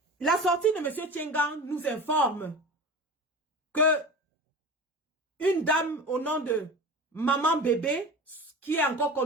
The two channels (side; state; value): both; normal; correlation 0.33